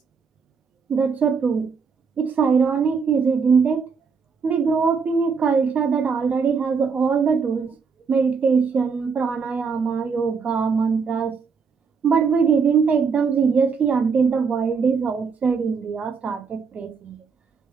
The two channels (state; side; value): quieter; left; 5.5 dB